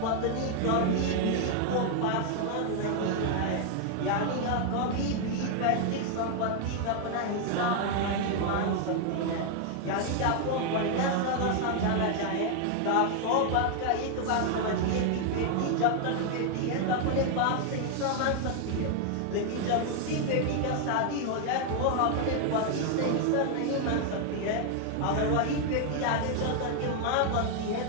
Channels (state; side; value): different; both; correlation 0.00